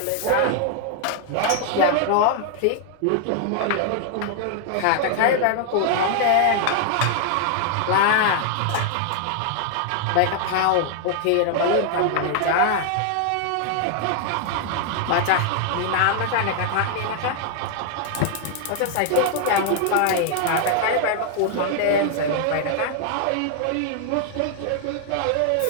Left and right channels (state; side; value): different; both; correlation 0.00